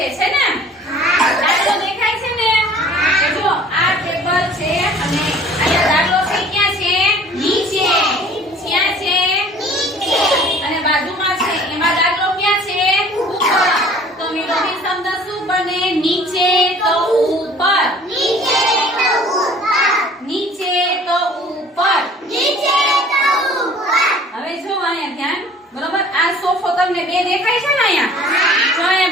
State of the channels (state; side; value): normal; both; correlation 0.50